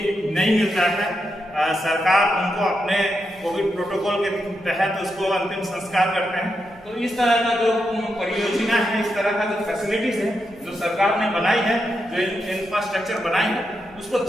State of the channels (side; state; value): right; noise; rumble, 25 dB below the sound